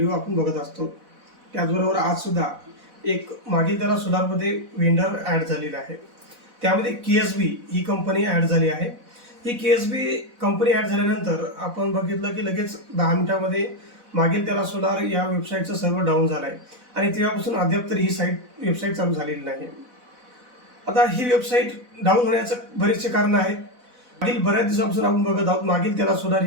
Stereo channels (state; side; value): late; left; 4.0 ms